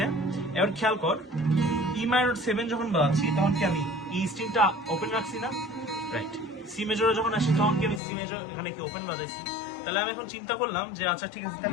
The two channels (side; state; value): right; drops out; at 8.0 s